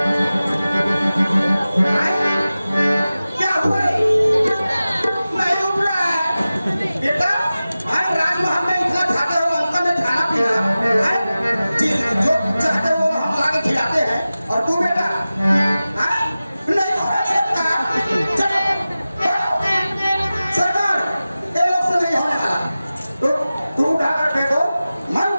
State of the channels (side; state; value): both; inverted; correlation -0.96